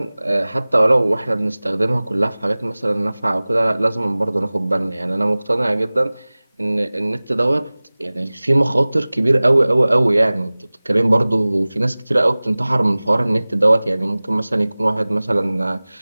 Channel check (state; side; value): inverted; both; correlation -0.99